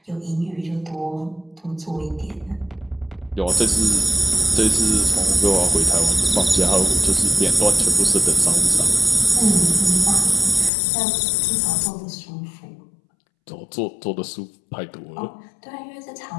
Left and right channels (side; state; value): right; drops out; at 10.7 s